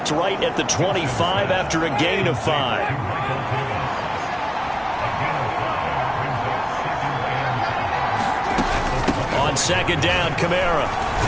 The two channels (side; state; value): both; identical; correlation 1.00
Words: right at the 25 after a gain of 5. On 2nd down, Kamara.